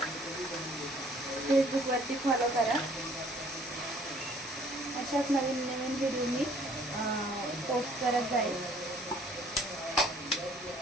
फेसबुकवरती फॉलो करा. अशाच नवीन नवीन व्हिडिओ मी पोस्ट करत जाईल.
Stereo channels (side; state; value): both; normal; correlation 0.58